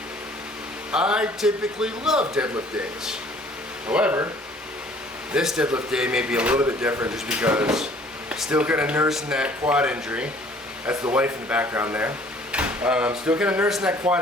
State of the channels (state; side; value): normal; both; correlation 0.55